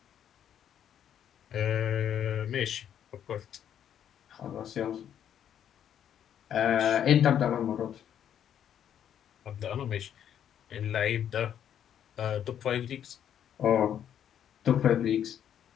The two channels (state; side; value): quieter; right; 9.6 dB